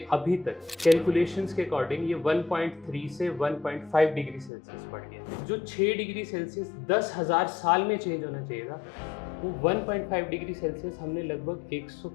अभी तक कैलकुलेशंस के अकॉर्डिंग ये 1.3 से 1.5 डिग्री सेल्सियस बढ़ गया। जो 6 डिग्री सेल्सियस 10,000 साल में चेंज होना चाहिए था, वो 1.5 डिग्री सेल्सियस हमने लगभग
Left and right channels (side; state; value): right; drops out; at 4.5 s